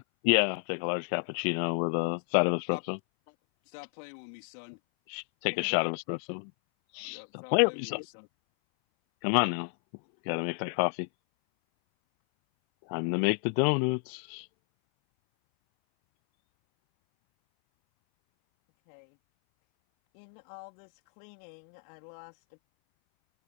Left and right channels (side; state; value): right; silent; 58 dB below the other